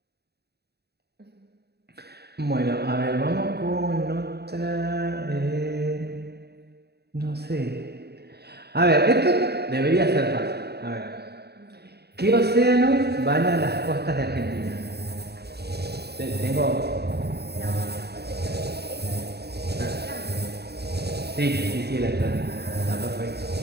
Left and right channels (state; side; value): late; left; 0.48 ms